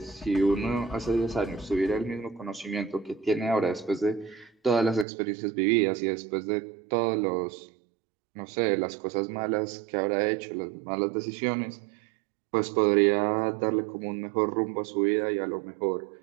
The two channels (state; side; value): drops out; left; at 5.1 s